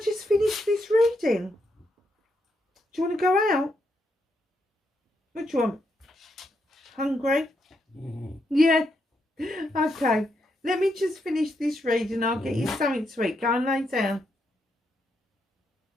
just finish this reading? Do you want to go out? What do you want? Hungry? Yeah. Okay. Let me just finish this reading. I'll get you something to eat. Go and lay down.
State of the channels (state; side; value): normal; both; correlation 0.80